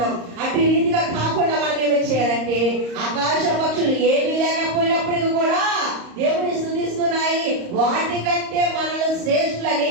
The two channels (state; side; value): late; left; 34 ms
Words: అటు రీతిగా కాకుండా మనం ఏమి చేయాలంటే ఆకాశ పక్షులు ఏమీ లేకపోయినప్పటికీ కూడా దేవుని స్తుతిస్తున్నాయి. వాటికంటే మనల్ని శ్రేష్ఠులని